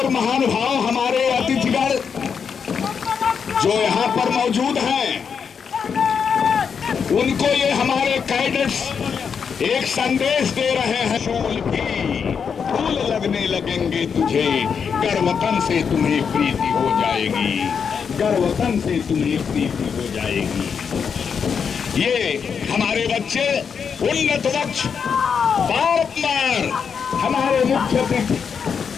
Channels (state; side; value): quieter; right; 6.6 dB